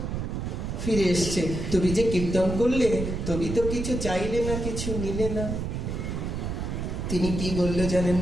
ফিরে এসছে, তুমি যে কীর্তন করলে, তুমি তো কিছু চাইলে না, কিছু নিলে না। তিনি কি বললো জানেন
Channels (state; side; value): noise; right; rumble, 3 dB below the sound